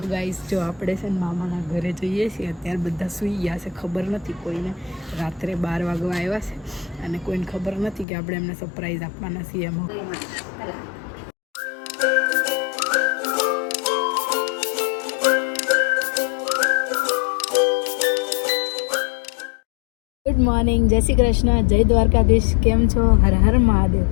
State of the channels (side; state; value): right; drops out; at 8.1 s